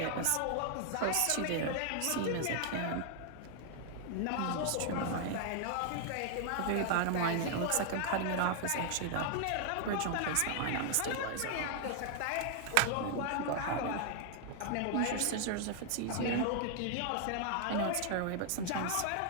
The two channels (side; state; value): both; different; correlation 0.00